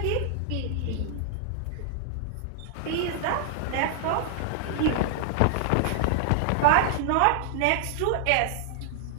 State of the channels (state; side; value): different; both; correlation -0.01